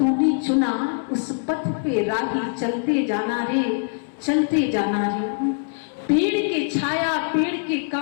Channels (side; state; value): right; silent; digital silence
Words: चुना, उस पथ पे राही चलते जाना रे, चलते जाना रे। पेड़ के छाया पेड़ के